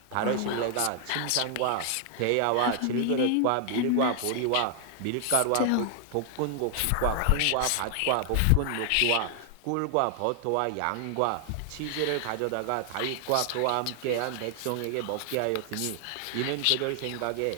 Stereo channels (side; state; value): both; different; correlation 0.00